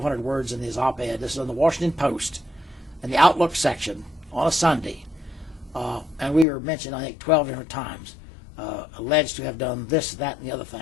words in his op-ed. This is in the Washington Post, in the Outlook section on a Sunday. And we were mentioned, I think, 12 different times, alleged to have done this, that, and the other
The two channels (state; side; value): drops out; right; at 6.5 s